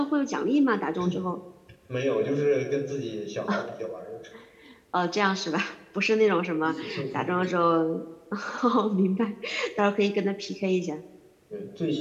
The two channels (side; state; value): both; identical; correlation 1.00